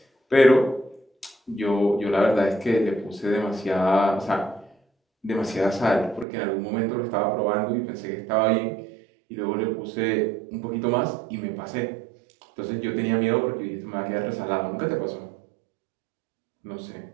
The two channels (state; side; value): drops out; left; at 6.2 s